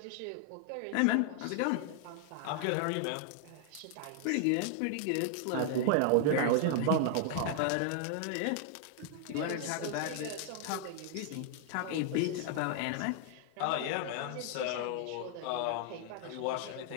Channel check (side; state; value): both; different; correlation 0.00